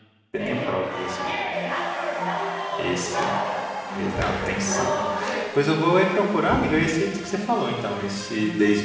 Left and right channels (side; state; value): both; identical; correlation 1.00